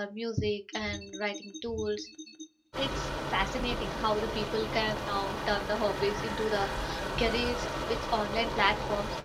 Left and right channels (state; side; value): identical; both; correlation 1.00